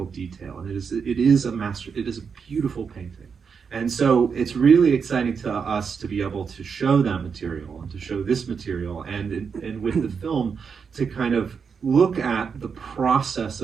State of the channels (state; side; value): quieter; left; 6.1 dB